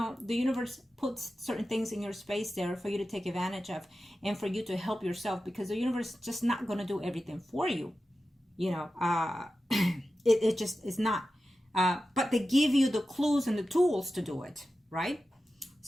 the universe puts certain things in your space there for you to take advantage of and for you to help yourself, because the universe is just not going to do everything for you. You know, it just is not. But they give you the clues and the tools to do it, right?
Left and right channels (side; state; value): both; normal; correlation 0.93